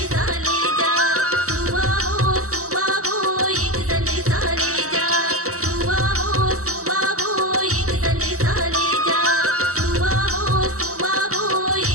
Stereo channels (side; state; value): left; late; 0.64 ms